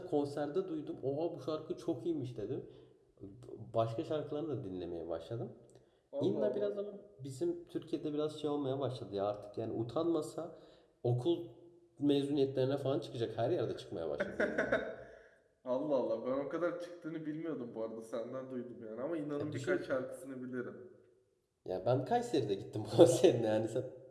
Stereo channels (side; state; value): both; identical; correlation 1.00